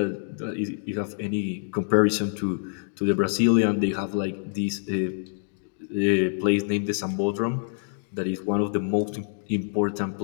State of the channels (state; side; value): silent; right; digital silence